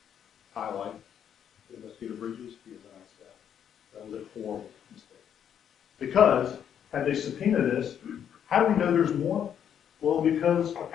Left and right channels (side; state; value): right; quieter; 9.0 dB